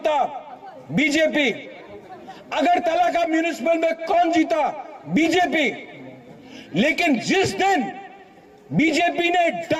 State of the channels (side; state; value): both; identical; correlation 1.00